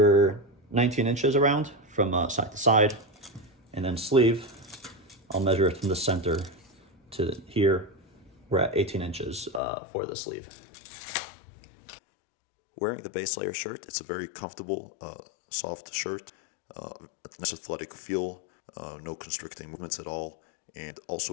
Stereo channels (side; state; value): right; drops out; at 9.6 s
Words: 19 inches around from side to side, and then sleeve, I'll measure it from the center to here. We're at 18 inches for the sleeve. Wearing the base layer shirt, it's a very comfortable, soft shirt. A nice athletic feel, no constricting movements at all, and